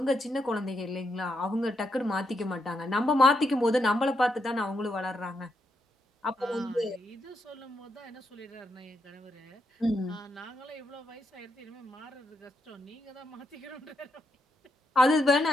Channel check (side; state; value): both; normal; correlation 0.81